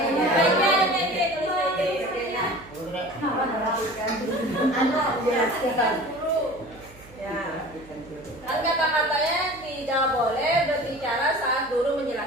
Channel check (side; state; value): right; noise; hum, 22 dB below the sound